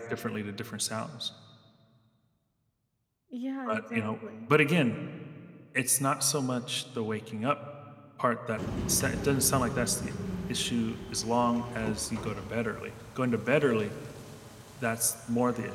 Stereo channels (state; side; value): identical; both; correlation 1.00